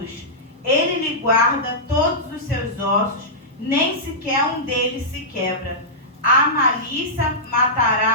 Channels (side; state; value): both; normal; correlation -0.14